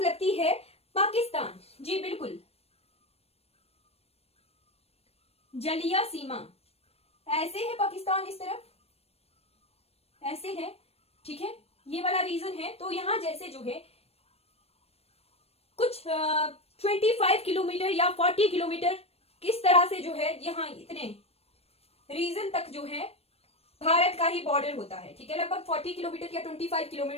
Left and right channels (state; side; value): late; right; 0.29 ms